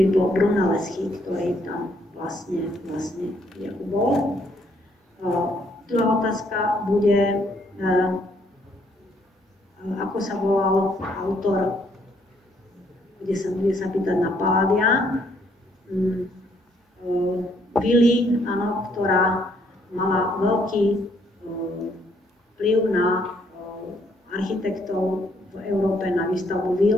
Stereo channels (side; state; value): both; normal; correlation 0.69